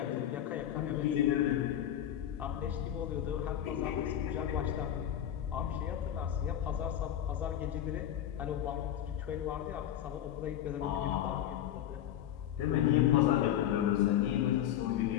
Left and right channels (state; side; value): quieter; right; 11.1 dB